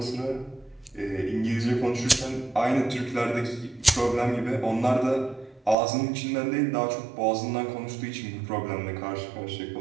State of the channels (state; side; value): drops out; left; at 5.8 s